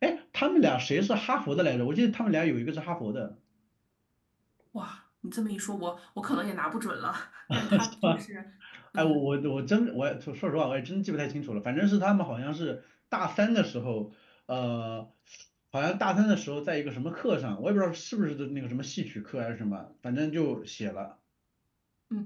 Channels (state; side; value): identical; both; correlation 1.00